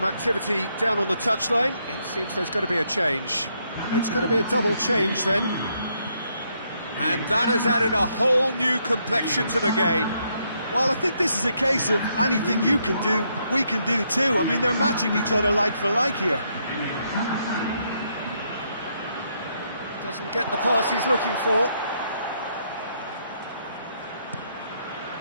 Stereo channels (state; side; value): inverted; both; correlation -0.75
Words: activity down on the touchline. It seems there's going to be a change. It's going to be a double change then. And that has added a whole new complexion to the game. Well, I think this is a case of anything you can do, we can do too. I mean, they're matching each other like for like here. Doesn't get the pass he's looking for.